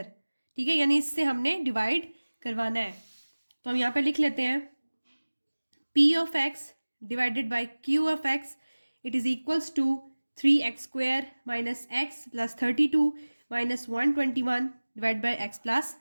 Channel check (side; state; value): both; inverted; correlation -1.00